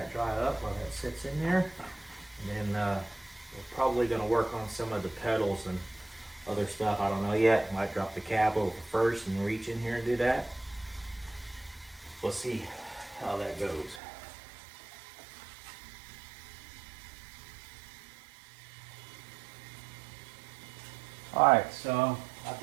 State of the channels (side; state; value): left; drops out; at 14.0 s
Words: dry up while that sits in there. And then we're probably going to work on some of the pedals and other stuff. I don't know yet. Might drop the cab over first and reach in here and do that. We'll see how that goes. Alright, so I've